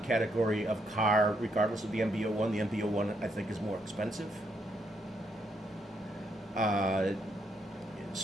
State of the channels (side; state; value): both; normal; correlation 0.75